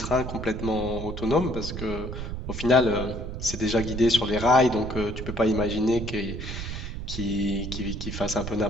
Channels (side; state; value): right; noise; rumble, 6 dB below the sound